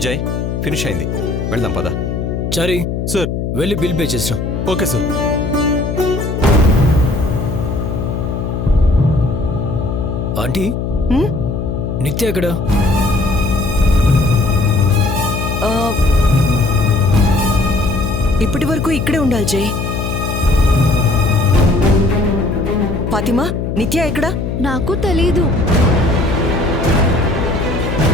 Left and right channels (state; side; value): noise; left; hum, 3 dB below the sound